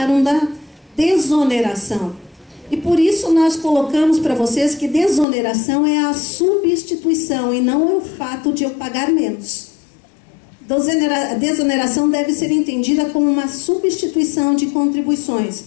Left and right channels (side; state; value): right; drops out; at 5.2 s